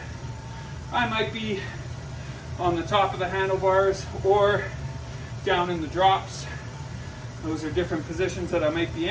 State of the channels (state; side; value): identical; both; correlation 1.00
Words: I might be on the top of the handlebars, or down in the drops. Those are different positions that I might be